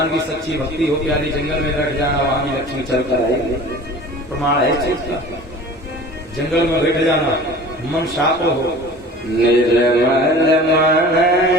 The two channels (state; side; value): normal; both; correlation 0.41